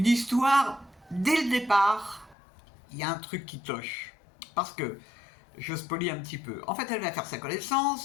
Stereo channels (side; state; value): right; drops out; at 2.4 s